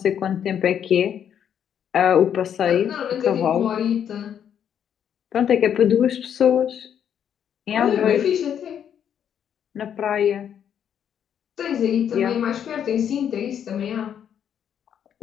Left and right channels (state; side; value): quieter; right; 8.9 dB